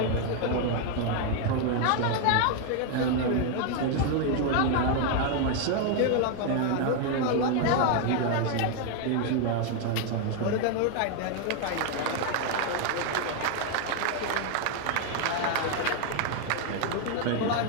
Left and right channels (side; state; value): both; different; correlation 0.01